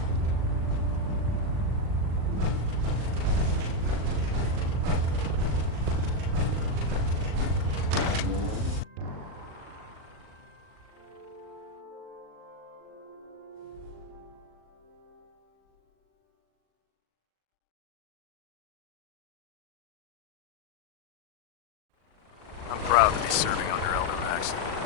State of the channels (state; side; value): late; left; 39 ms